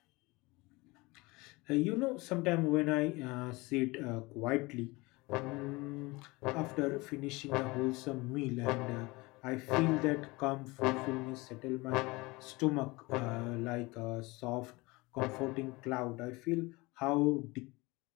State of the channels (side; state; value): right; quieter; 23.5 dB